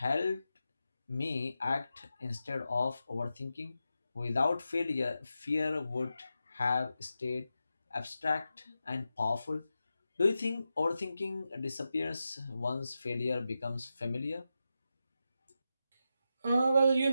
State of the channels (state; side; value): inverted; both; correlation -0.90